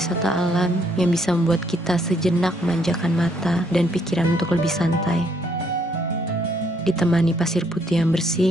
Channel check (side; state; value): both; normal; correlation 0.69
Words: alam yang bisa membuat kita sejenak memanjakan mata dan pikiran untuk lebih santai. Ditemani pasir putih yang